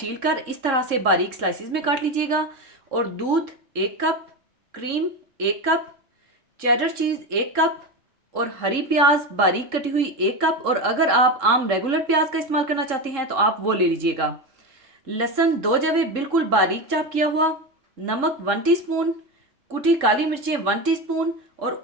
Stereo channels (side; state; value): left; late; 3.7 ms